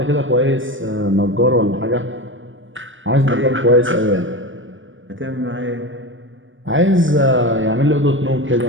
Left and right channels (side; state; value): left; late; 0.56 ms